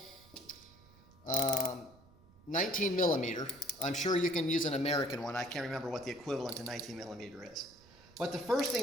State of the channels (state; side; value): noise; right; rumble, 25 dB below the sound